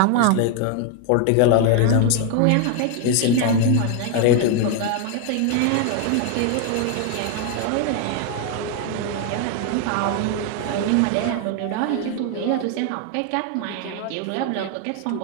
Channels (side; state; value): both; different; correlation 0.00